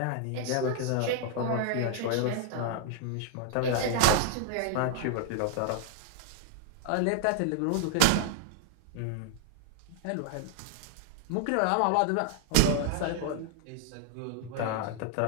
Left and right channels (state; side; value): different; both; correlation 0.00